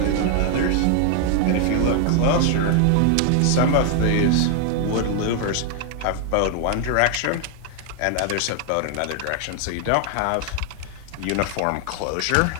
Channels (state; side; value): different; both; correlation 0.00